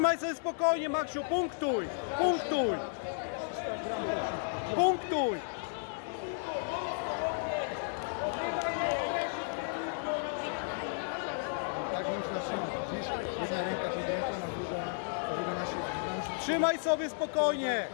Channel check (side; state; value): right; silent; digital silence